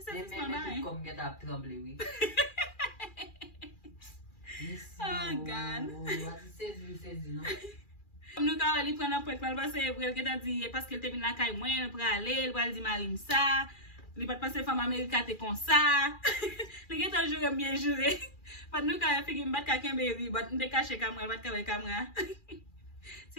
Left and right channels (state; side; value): late; right; 2.4 ms